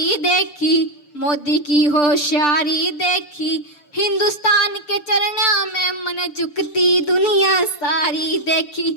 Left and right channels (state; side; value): late; right; 6.8 ms